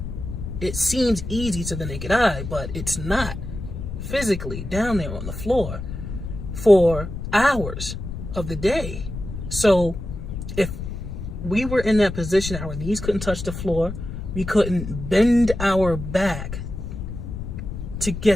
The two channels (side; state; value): left; noise; rumble, 7 dB below the sound